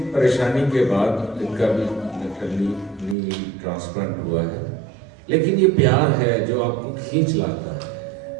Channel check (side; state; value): left; drops out; at 3.2 s